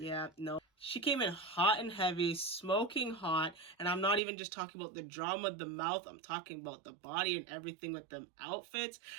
No. She came in hot and heavy, smoking hot, and I'm not even just talking about the drama of the mouth. I'm talking about the body and everything with them outfits.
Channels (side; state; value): left; drops out; at 4.2 s